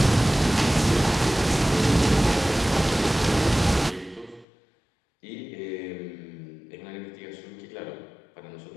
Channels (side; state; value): right; drops out; at 4.5 s